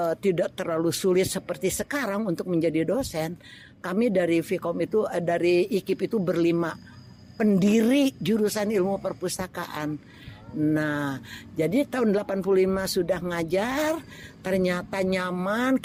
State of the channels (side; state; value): both; identical; correlation 1.00